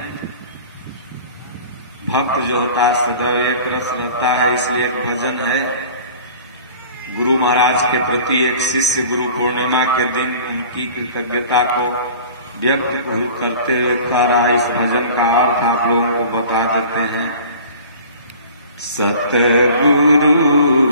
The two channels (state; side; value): inverted; both; correlation -0.44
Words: भक्त जो होता है सदैव एक रस रहता है। इसलिए एक भजन है गुरु महाराज के प्रति, एक शिष्य गुरु पूर्णिमा के दिन उनकी कृतज्ञता को व्यक्त करते हुए कह रहा है। इस भजन का अर्थ आप लोगों को बता देते हैं। सतगुरु